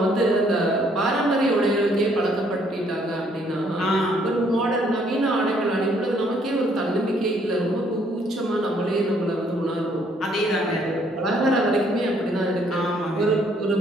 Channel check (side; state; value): both; normal; correlation 0.66